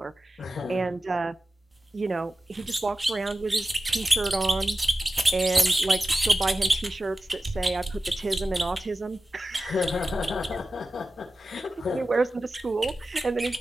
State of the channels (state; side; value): normal; both; correlation 0.94